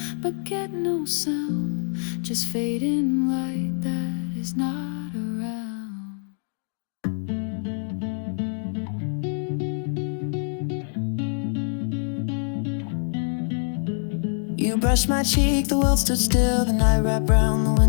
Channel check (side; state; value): right; silent; digital silence